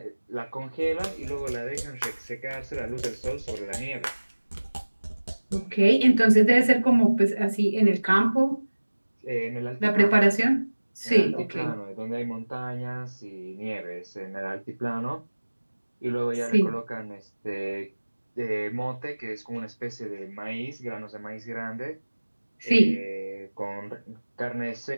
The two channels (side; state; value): both; inverted; correlation -1.00